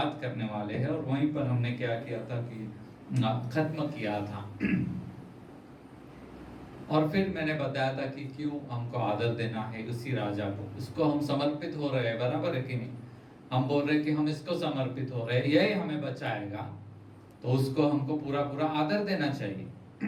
करने वाले हैं और वहीं पर हमने क्या किया था कि खत्म किया था। और फिर मैंने बताया था कि क्यों हमको आदर देना है उसी राजा को, उसको हम समर्पित हो रहे हैं, बराबर है कि नहीं। हम बोल रहे हैं कि हम इसको समर्पित हो रहे हैं, यही हमें बचाएगा, तो उसको हमको पूरा पूरा आदर देना चाहिए।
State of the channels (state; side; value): identical; both; correlation 1.00